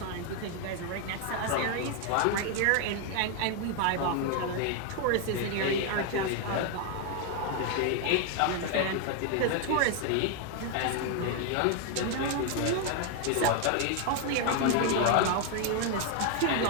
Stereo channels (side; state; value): both; different; correlation 0.01